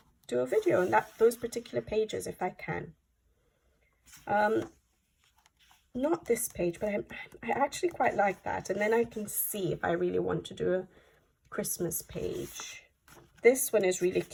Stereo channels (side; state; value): both; identical; correlation 1.00